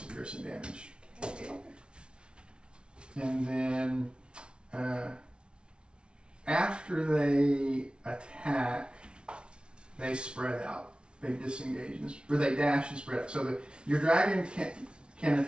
of piercing damage. Okay. And then after they attack, they spread out. They disengage, or they dash and spread out. So that your dragon can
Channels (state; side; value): late; left; 0.057 ms